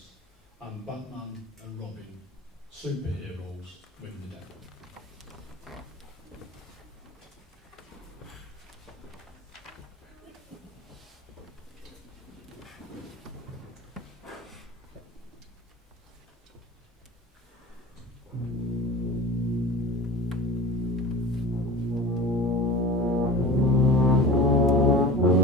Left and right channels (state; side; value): normal; both; correlation 0.34